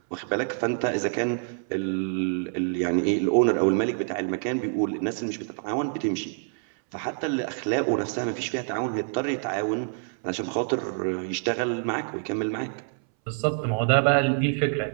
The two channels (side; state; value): left; silent; 61 dB below the other